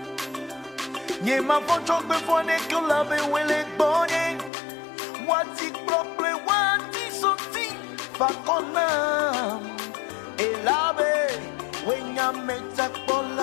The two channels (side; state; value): right; drops out; at 4.5 s